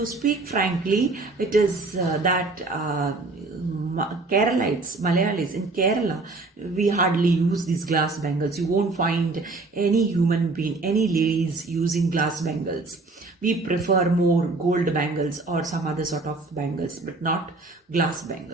frankly, it is that Keralites, Malayalis in Kerala, we hardly use these glass bangles. You won't find any human being, any ladies using glass bangles. We prefer more gold bangles or some other sort of bangles, but not glass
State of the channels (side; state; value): left; quieter; 3.4 dB